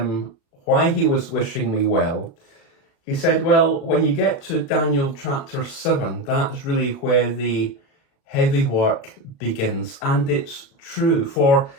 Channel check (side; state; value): right; late; 36 ms